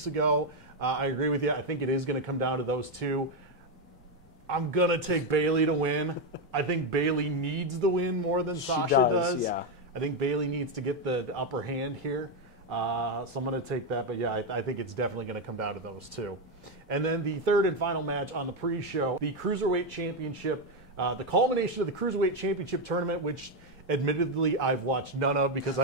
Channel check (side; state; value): both; normal; correlation 0.06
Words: ago. I agree with you. I think it is going to come down to those two. I'm going to take Bayley to win. I think Bayley needs the win more than Sasha does. Yeah. I think Bayley needs to get the upper hand here. So I'm going to take that. But, yeah, I think it's definitely going to come down to those two. And then the third and final match on the pre-show, the Cruiserweight Championship, the culmination of the Cruiserweight Championship tournament, which admittedly I've watched none of because